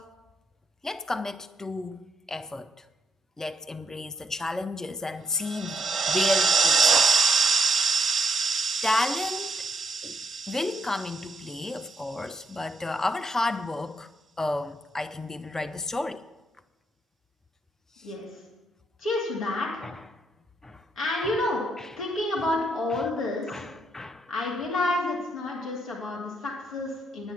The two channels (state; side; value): normal; both; correlation 0.76